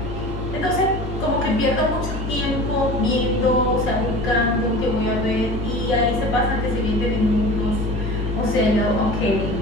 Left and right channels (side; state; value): both; normal; correlation 0.37